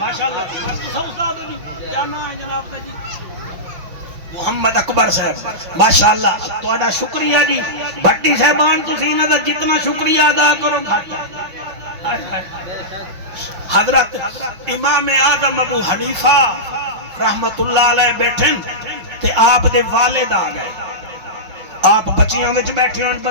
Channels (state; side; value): late; left; 5.6 ms